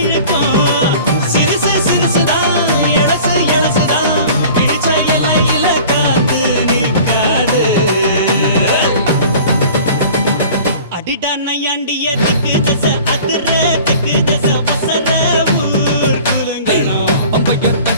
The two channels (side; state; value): both; inverted; correlation -0.44